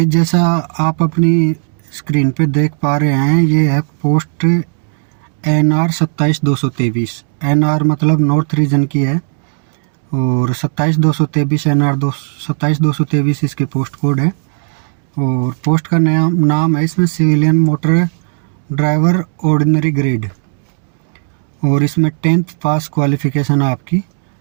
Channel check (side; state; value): left; silent; 59 dB below the other